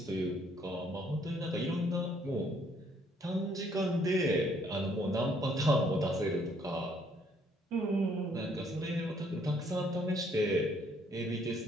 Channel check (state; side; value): normal; both; correlation 0.66